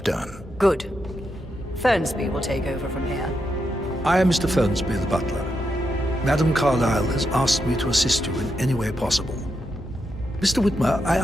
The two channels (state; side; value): normal; both; correlation 0.84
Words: done. Good. Fernsby will take over from here. I am Mr. Fernsby, the butler. Madame Carlyle has asked me to assist you in any way possible. Mr. Whitmer, I